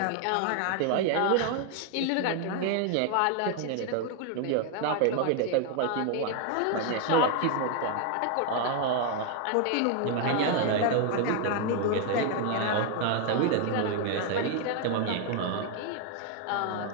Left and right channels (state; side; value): different; both; correlation 0.01